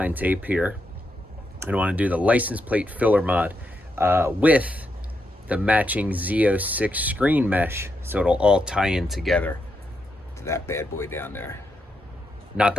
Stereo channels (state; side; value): normal; both; correlation 0.82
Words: tape here and I want to do the license plate filler mod with the matching Z06 screen mesh, so it'll all tie in together to that bad boy down there. Not